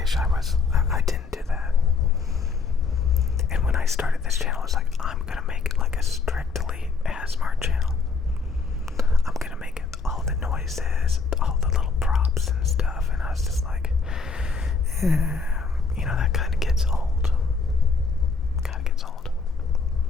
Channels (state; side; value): quieter; right; 4.7 dB